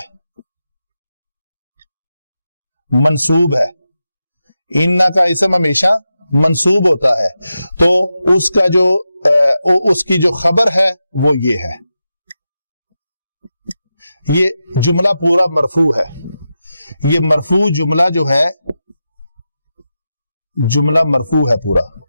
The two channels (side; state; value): both; inverted; correlation -0.90